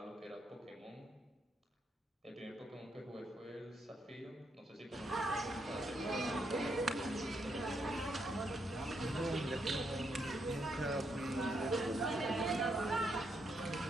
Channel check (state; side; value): normal; both; correlation 0.78